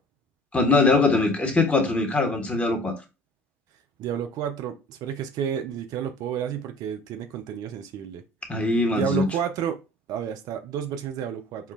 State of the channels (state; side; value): normal; both; correlation 0.47